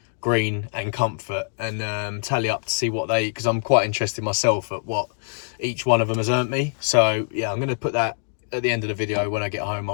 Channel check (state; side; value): silent; right; digital silence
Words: Green and Comfort, and tally up to see what they, because I'm quite interested myself at what each one of them has earned me. So yeah, I'm going to put that at the end of the video. When I get home,